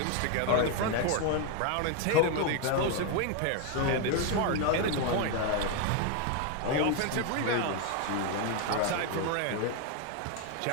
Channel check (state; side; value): different; both; correlation 0.01